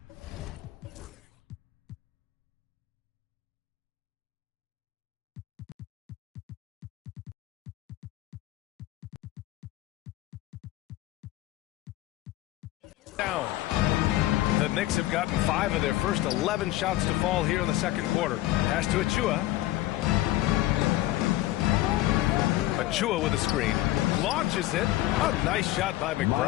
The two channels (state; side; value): quieter; right; 15.9 dB